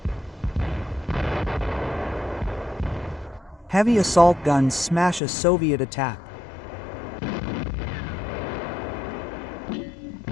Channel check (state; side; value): drops out; right; at 5.2 s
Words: Heavy assault guns smash a Soviet attack.